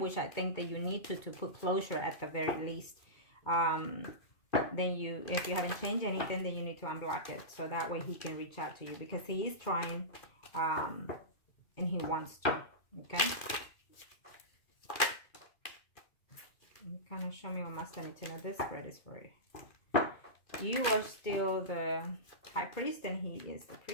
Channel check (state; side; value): late; right; 2.5 ms